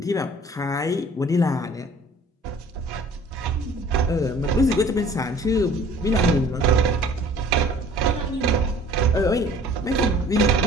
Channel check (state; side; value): normal; both; correlation 0.51